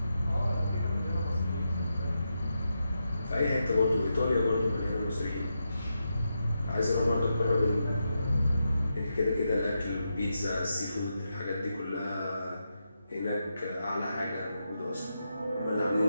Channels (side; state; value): both; inverted; correlation -0.86